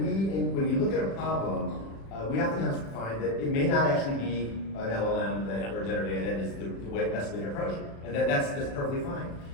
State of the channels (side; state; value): right; late; 36 ms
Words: you look at a problem, we oftentimes find that it may not actually be an LLM or generative AI that is the best way to approach it, and that's perfectly fine.